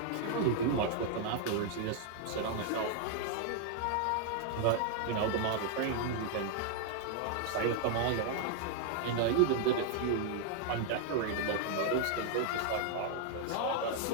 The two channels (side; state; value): both; different; correlation 0.00